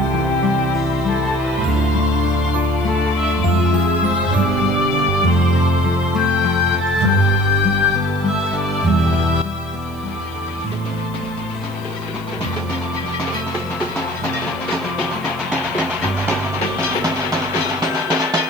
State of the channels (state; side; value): noise; left; hiss, 26 dB below the sound